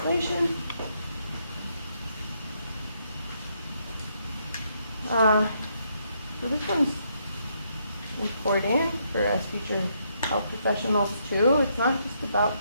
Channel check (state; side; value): inverted; both; correlation -0.75